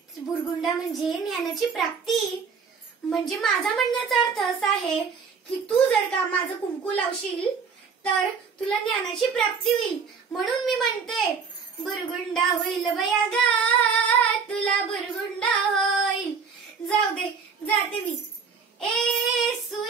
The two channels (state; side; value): quieter; left; 5.7 dB